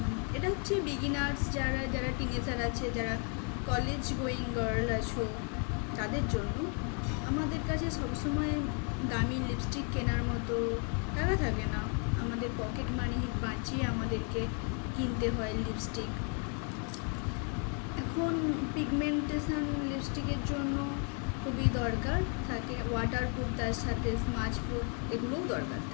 এটা হচ্ছে বিগিনার্স, যারা টিনেজার আছে, যারা কলেজ গোয়িং গার্ল আছো তাদের জন্য। আমাদের কাছে সবসময় দামি লিপস্টিক কেনার মতো টাকা থাকে না, আমাদের পকেট মানি বাঁচিয়ে আমাদেরকে কিনতে হয় লিপস্টিক। এখন পিগমেন্টেশন লিপস্টিকের জন্য খুবই দরকার থাকে, ওয়াটারপ্রুফ, তার সাথে স্মাচ প্রুফ এগুলোও দরকার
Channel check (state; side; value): quieter; right; 40.0 dB